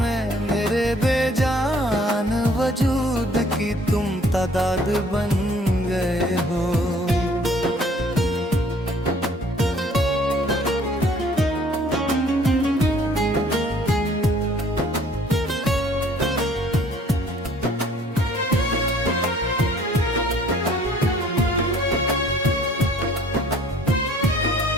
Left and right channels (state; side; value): normal; both; correlation 0.57